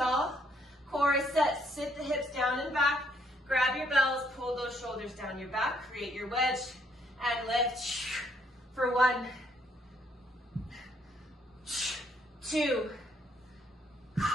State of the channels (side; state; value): both; normal; correlation 0.69